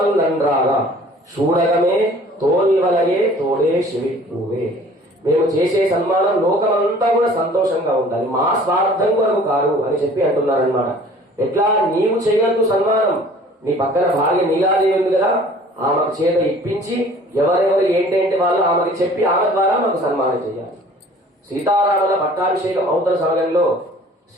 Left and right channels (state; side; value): normal; both; correlation 0.50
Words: నంద్రాల చూడగమే తోల్వలగే తోడే శివిపూవే. మేము చేసే సన్మానం లోకమంతా కూడా సంతోషంగా ఉండాలి, మా స్వార్థం కొరకు కాదు అని చెప్పి అంటున్నారనమాట. ఎట్లా నీవు చేయొద్దు సన్మానం, నీ పక్కన భార్య నీలాదేవి ఉంది కదా, ఆమెకు చేత ఇప్పించి ఎవరెవరు ఏంటంటే వాళ్ళు ఆమెకి చెప్పి ఆమె ద్వారా మాకు సన్మానం చేయాలి. సీతారాముల పట్టాభిషేకం అవుతున్న సమయంలో